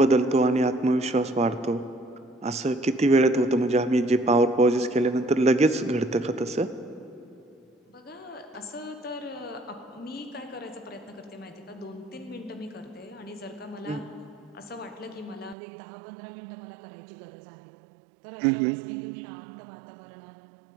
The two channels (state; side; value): drops out; left; at 15.6 s